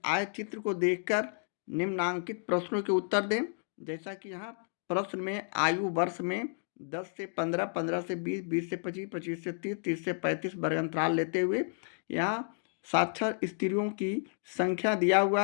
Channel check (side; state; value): right; silent; digital silence